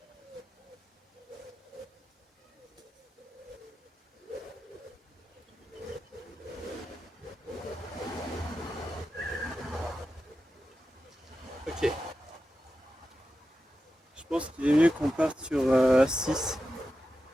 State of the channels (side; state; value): both; normal; correlation 0.91